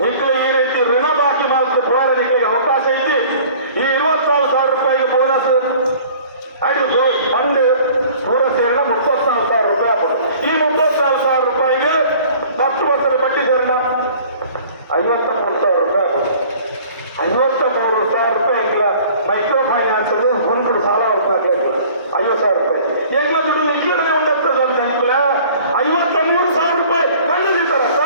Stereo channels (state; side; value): inverted; both; correlation -0.49